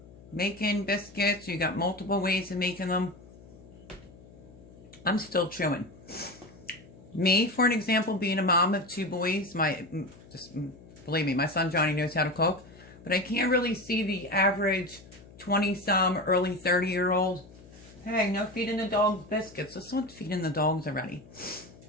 making biscuits, you got multiple ways of making them, I'm still chewing. Me, for an example, being a mom of 2 boys, just believe me, my son Johnny knows how to cook, but I can't really see the average 20-some, early 30-year-old. Hey, no feeding the dogs biscuits. Let's not feeding the dogs already.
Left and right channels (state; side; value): noise; left; hum, 21 dB below the sound